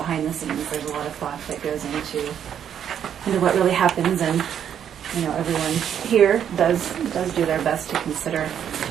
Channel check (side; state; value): left; quieter; 9.0 dB